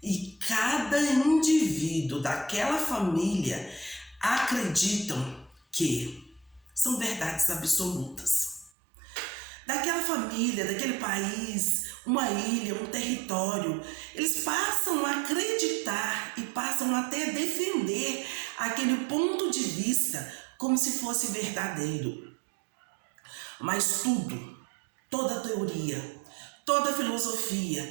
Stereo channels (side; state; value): left; drops out; at 8.7 s